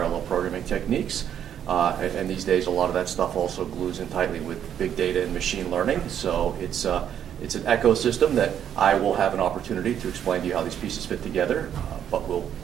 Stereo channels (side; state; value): left; quieter; 9.5 dB